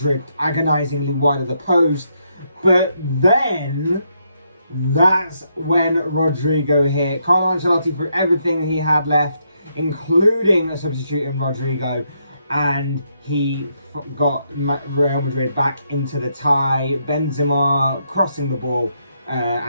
agonisingly wide of the post. But then, that's when Rodrigo hit. Carlo Ancelotti threw everything he had left, including a substitute in Rodrigo, and he got Real Madrid back into the tie. Benzema crossing the ball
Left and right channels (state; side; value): inverted; both; correlation -0.77